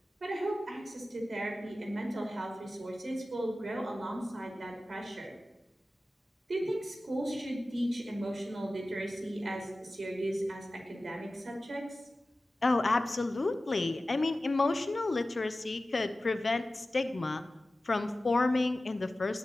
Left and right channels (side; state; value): both; normal; correlation 0.96